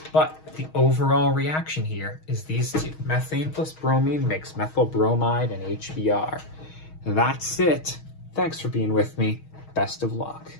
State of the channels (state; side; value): late; right; 6.4 ms